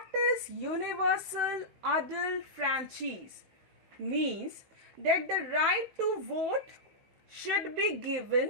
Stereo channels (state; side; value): late; left; 15 ms